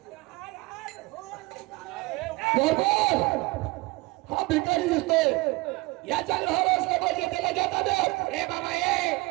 हा भिकारी दिसतोय याच्या घर असलं पाहिजे त्याला घेता दे. ए बाबा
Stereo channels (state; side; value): quieter; left; 23.3 dB